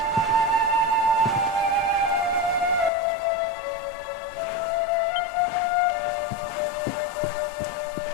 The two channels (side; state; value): right; drops out; at 2.9 s